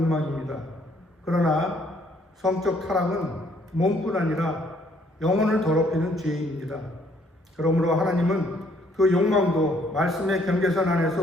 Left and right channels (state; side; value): normal; both; correlation 0.65